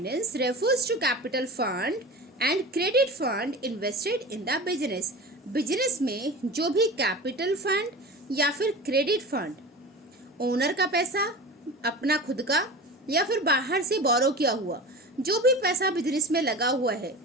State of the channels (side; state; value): both; normal; correlation 0.33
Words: refers to capital fund and credit fund invested in the business. Business में जो भी कैपिटल फंड या फिर क्रेडिट फंड, ओनर का पैसा, अपना खुद का या फिर बाहर से बोरो किया हुआ, जो भी पैसा बिजनेस में लगा हुआ है